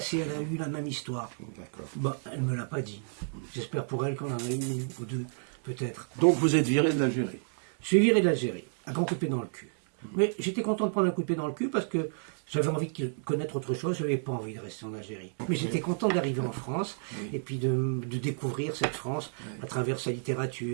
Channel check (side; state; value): left; silent; digital silence